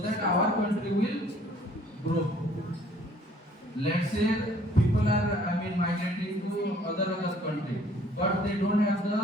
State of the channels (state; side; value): normal; both; correlation 0.58